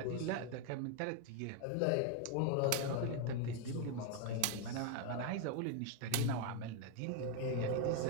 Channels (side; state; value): both; different; correlation 0.01